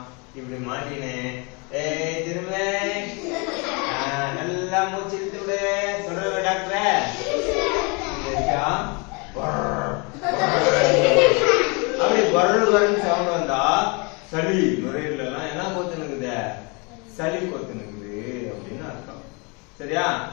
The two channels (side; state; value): right; quieter; 31.1 dB